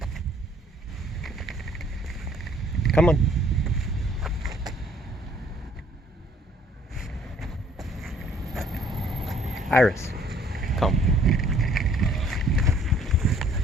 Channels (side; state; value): both; normal; correlation 0.60